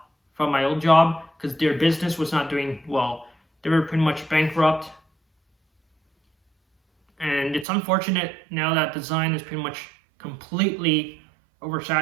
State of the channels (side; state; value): left; drops out; at 7.7 s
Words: from my old job because their business was not doing well. They were pretty much bankrupt. And it's unfortunate now that design is pretty much completely